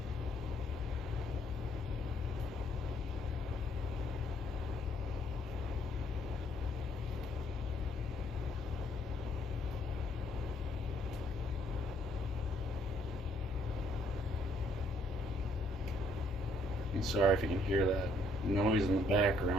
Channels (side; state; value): both; normal; correlation 0.67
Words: I'm sorry if you can hear that noise in the